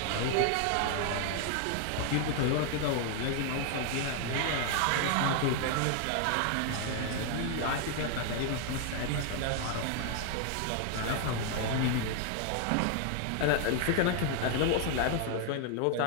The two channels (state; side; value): different; both; correlation 0.00